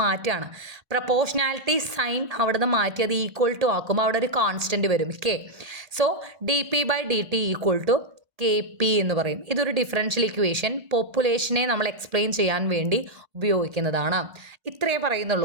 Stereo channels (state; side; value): late; left; 1.8 ms